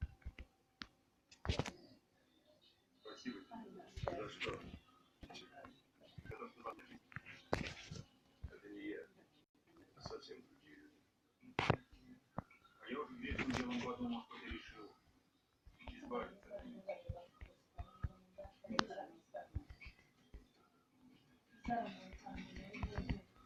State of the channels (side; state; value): both; identical; correlation 1.00